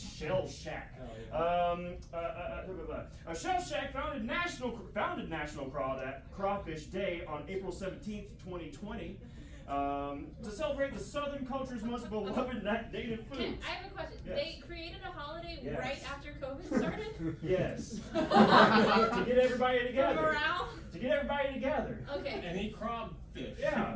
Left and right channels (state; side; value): identical; both; correlation 1.00